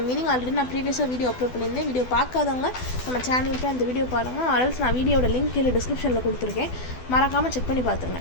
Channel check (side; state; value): right; late; 12 ms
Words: மீனிங் ஆல்ரெடி நான் ப்ரீவியஸாக வீடியோ அப்லோட் பண்ணியிருந்தேன். வீடியோ பார்க்காதவங்க நம்ம சேனலுக்கு அந்த வீடியோ பாருங்கள். ஆல்ஸ் நான் வீடியோட லிங்க் கீழே டிஸ்கிரிப்ஷனில் கொடுத்துருக்கேன், மறக்காமல் செக் பண்ணி